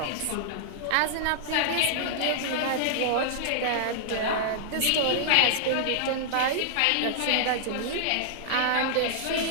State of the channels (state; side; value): different; both; correlation -0.01